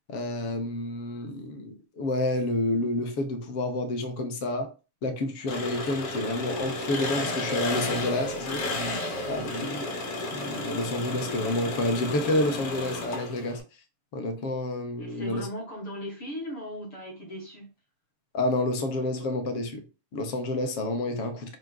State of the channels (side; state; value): right; late; 7.2 ms